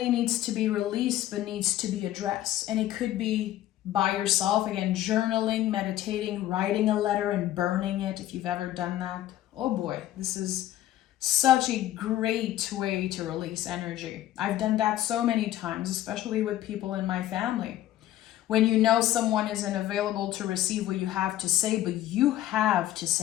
needs to be released, but needs to be addressed. And it could be by yourself, again, journaling, meditating, writing a letter and burning it, if you've ever done that. Oh boy, this is such a great way to release energy. I've done that so many times, especially with people in my family. When you know someone isn't available to receive what you have to say, but you have to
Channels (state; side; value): quieter; right; 13.5 dB